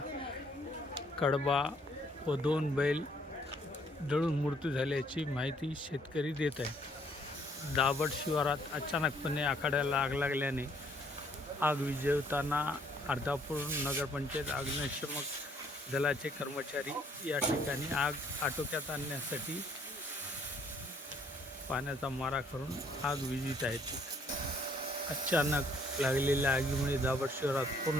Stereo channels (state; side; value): normal; both; correlation 0.64